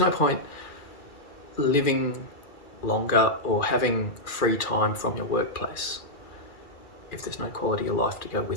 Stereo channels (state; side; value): late; right; 2.3 ms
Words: point living longer or having free time from your workplace if there's no quality of life to go